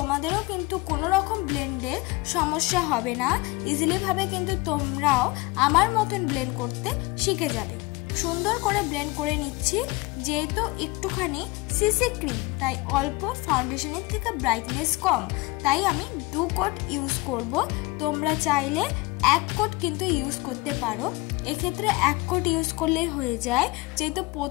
কিন্তু কোনো রকম ব্লেন্ডের সমস্যা হবে না। ইজিলিভাবে কিন্তু তোমরাও আমার মতন ব্লেন্ড করতে শিখে যাবে। সুন্দর করে ব্লেন্ড করে নিচ্ছি। যেহেতু একটুখানি সিসি ক্রিম তাই অল্প ফাউন্ডেশনের থেকে ব্রাইটনেস কম, তাই আমি 2 কোট ইউজ করব। তোমরা চাইলে 1 কোট কিন্তু ইউজ করতে পারো। এক্ষেত্রে 1 কোট ইউজ করলেই হয়ে যায়। যেহেতু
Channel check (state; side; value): quieter; right; 22.6 dB